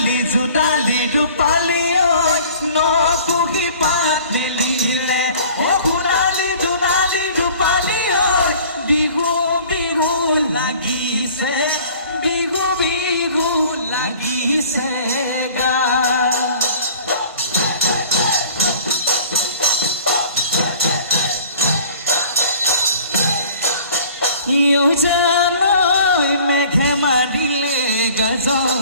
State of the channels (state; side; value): inverted; both; correlation -0.48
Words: জোনালী ৰূপালী ঐ নকুহি পাত মেলিলে অ সোণালী জোনালী ৰূপালী ঐ বিহু বিহু লাগিছে বিহু বিহু লাগিছে গা জানৈ মেঘে মাৰিলে